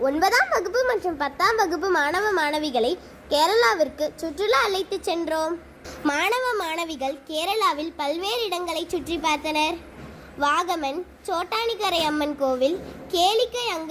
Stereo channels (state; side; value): identical; both; correlation 1.00